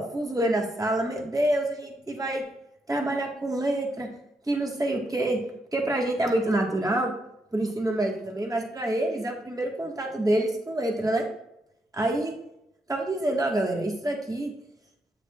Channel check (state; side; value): normal; both; correlation 0.80